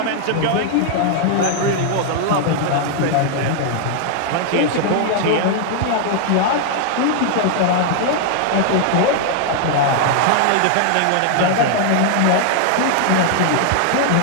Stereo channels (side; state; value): both; different; correlation 0.00